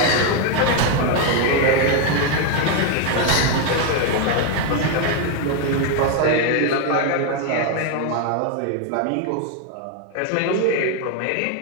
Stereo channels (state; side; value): different; both; correlation 0.01